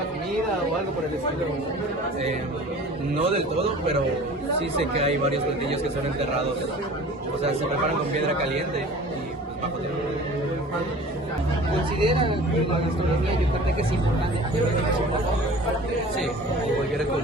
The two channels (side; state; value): both; normal; correlation 0.43